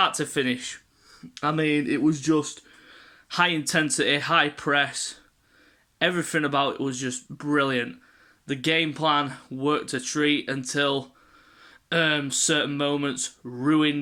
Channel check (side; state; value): both; identical; correlation 1.00